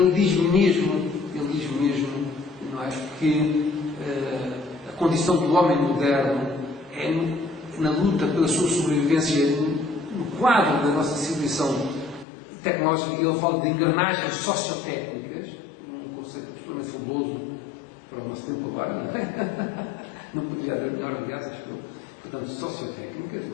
diz mesmo, não é, que a condição do homem moderno é na luta pela sua sobrevivência no quadro da nossa civilização tecnológica. Ele fala de engrenagens sociotécnicas, um conceito absolutamente fabuloso para o nosso tempo agora, não é? Não poderia haver melhor, aliás, acho que eu. Portanto, sociotécnicas,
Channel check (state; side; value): drops out; right; at 12.2 s